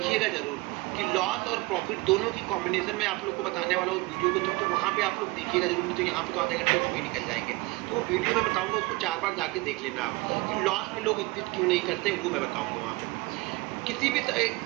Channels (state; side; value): quieter; left; 22.9 dB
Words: जरूर कि लॉस और प्रॉफिट दोनों की कॉम्बिनेशन में आप लोग को बताने वाला हूँ उस वीडियो को। तो वहाँ पे आप लोग देखिएगा जरूर, नहीं तो यहाँ पे तो आधे घंटे उसमें निकल जाएंगे। तो वो वीडियो मैं बताऊंगा, उसको 4 बार जाके देख लेना आप कि लॉस में लोग एग्जिट क्यों नहीं करते, वो मैं बताऊंगा वहाँ पे। किसी भी